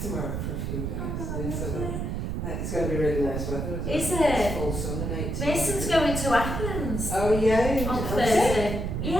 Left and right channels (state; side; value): noise; right; rumble, 2 dB below the sound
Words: tomorrow for a few days. Oh, Yeah, so lovely. it's going to be really nice weather. Is It's it? full sun and 18. Mason's going to Athens Oh, yeah. on Thursday.